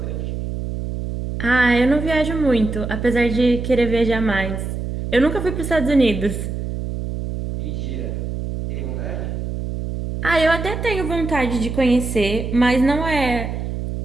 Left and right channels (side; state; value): right; noise; hum, 5 dB below the sound